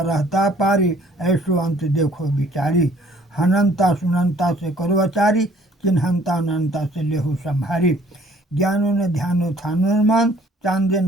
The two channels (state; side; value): normal; both; correlation 0.58